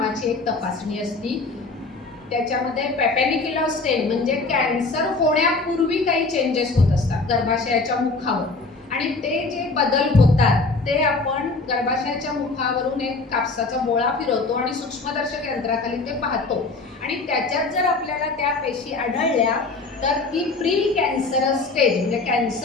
एक तपासणी असती. त्याच्यामध्ये पॅपेनिक्युलर स्टेन म्हणजे कॅन्सर होण्यापूर्वी काही चेंजेस होत असतात गर्भाशयाच्या मुखावर, आणि ते जे बदल होतात ते आपण गर्भाशयाच्या मुखावरून एक कापसाचा बोळा फिरवतो आणि सूक्ष्मदर्शक यंत्राखाली ते पाहतो. आणि त्याच्यात जर आपल्याला त्या पेशी आढळल्या तर ती प्री कॅन्सरस स्टेज म्हणजे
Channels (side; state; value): right; quieter; 3.7 dB